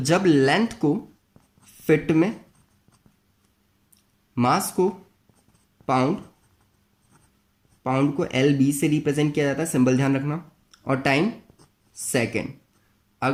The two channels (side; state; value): both; identical; correlation 1.00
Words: जब लेंथ को फिट में, मास को पाउंड, पाउंड को एलबी से रिप्रेजेंट किया जाता है, सिंबल ध्यान रखना, और टाइम सेकंड,